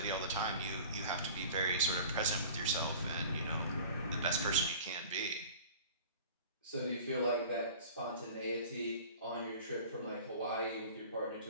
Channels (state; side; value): inverted; both; correlation -0.42